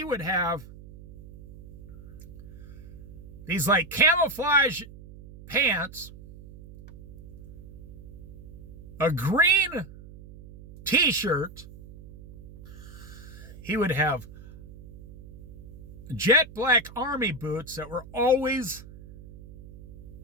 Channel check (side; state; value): right; noise; hum, 16 dB below the sound